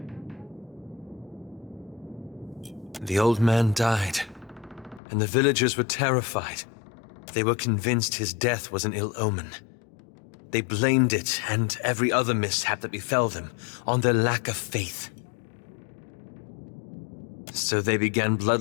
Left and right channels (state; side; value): drops out; right; at 5.0 s